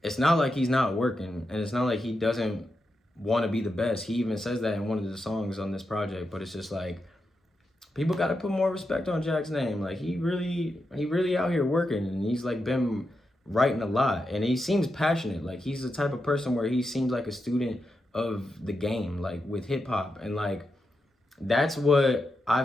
it's not like he's not working, and it's not like he doesn't want to be the best. He even says that in one of the songs on this project. But it's just like, people got to put more respect on Jack's name. Like he really out here working, and he's like been writing a lot, and he seems passionate. Like he's the type of person where he seems like a student of the game, like with hip hop, and like that's what I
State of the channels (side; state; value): both; normal; correlation 0.87